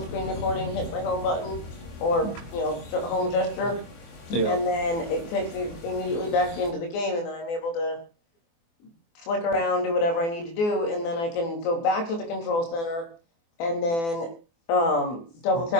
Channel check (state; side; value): late; right; 24 ms